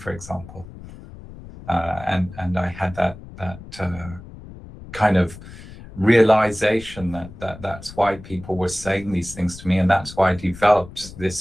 example. And I had that kind of realization that's why people were saying these things to me, and that's why I developed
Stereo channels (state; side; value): noise; left; rumble, 16 dB below the sound